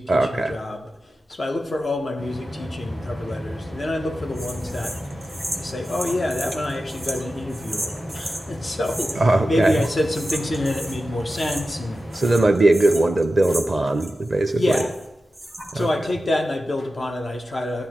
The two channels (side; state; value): both; normal; correlation 0.93